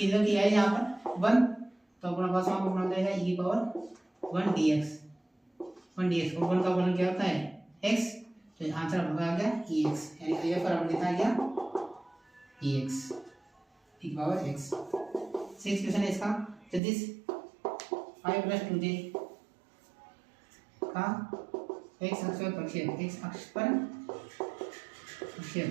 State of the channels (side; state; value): left; drops out; at 16.8 s